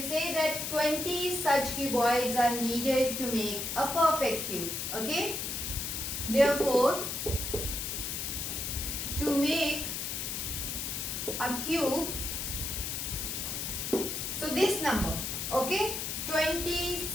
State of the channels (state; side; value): noise; left; hiss, 3 dB below the sound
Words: say that 20 such cuboids are needed to make a perfect cube. Okay. Therefore, to make a cube, so this number, okay, 20